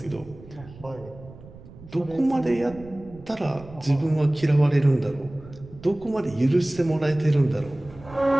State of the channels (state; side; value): noise; right; rumble, 19 dB below the sound